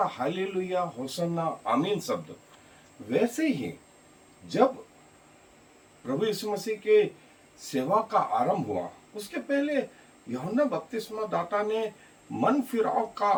हालेलुया होसन्ना आमीन शब्द, वैसे ही जब प्रभु यीशु मसीह के सेवा का आरंभ हुआ, उसके पहले यूहन्ना बपतिस्मा दाता ने मन फिराव का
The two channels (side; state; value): both; identical; correlation 1.00